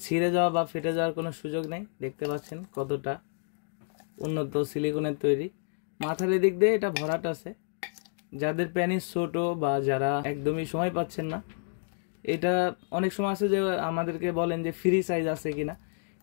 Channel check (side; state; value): right; silent; digital silence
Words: ছিঁড়ে যাওয়া বা ফেটে যাওয়ার কোনো সুযোগ নেই। দেখতে পাচ্ছেন কতটা উন্নত সিলিকনের তৈরি। মাথার এদিক দিয়ে এটা ভরাট আছে। যাদের প্যানিস ছোট বা যারা একদমই সময় পাচ্ছেন না, এটা অনেক সময় আছে যে আমাদেরকে বলেন যে ফ্রি সাইজ আছে কিনা,